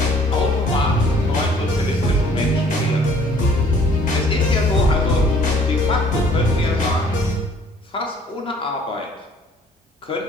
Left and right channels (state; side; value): normal; both; correlation 0.56